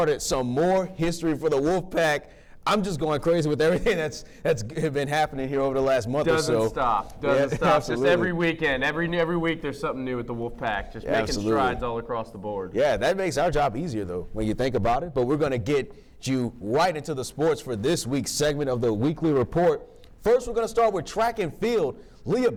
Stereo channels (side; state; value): both; identical; correlation 1.00